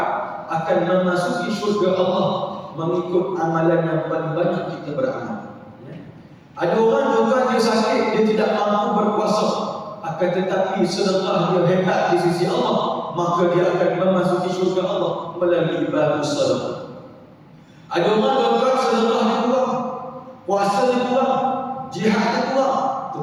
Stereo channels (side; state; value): both; identical; correlation 1.00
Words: akan memasuki syurga Allah mengikut amalan yang paling banyak kita beramal. Ada orang tuan-tuan, dia sakit, dia tidak mampu berpuasa, akan tetapi sedekah dia hebat di sisi Allah, maka dia akan memasuki syurga Allah melalui baru sedekah. Ada orang tuan-tuan, sedekah dia kurang, puasa dia kurang, jihad dia kurang,